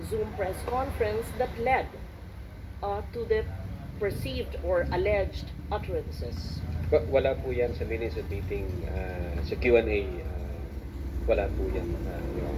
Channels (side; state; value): both; identical; correlation 1.00